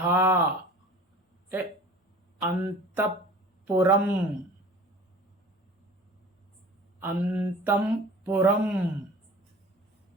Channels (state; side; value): normal; both; correlation 0.43